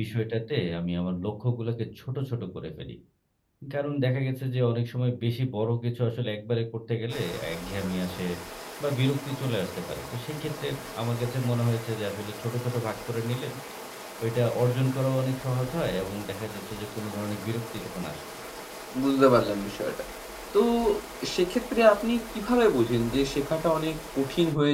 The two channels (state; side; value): identical; both; correlation 1.00